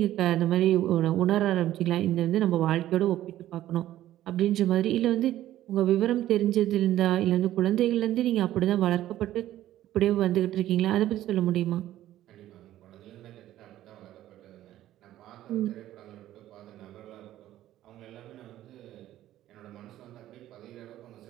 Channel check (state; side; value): quieter; left; 13.5 dB